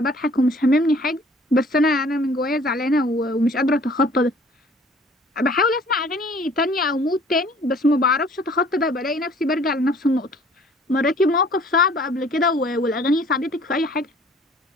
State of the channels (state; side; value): normal; both; correlation 0.54